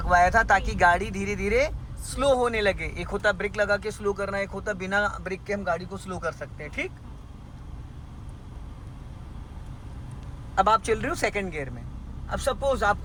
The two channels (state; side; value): identical; both; correlation 1.00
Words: था ताकि गाड़ी धीरे धीरे स्लो होने लगे। एक होता ब्रेक लगा के स्लो करना, एक होता बिना ब्रेक के हम गाड़ी को स्लो कर सकते हैं, ठीक। अब आप चल रहे हो सेकंड गियर में। अब सपोज